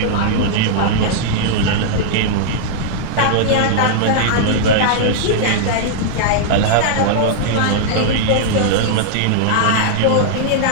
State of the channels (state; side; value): different; both; correlation -0.01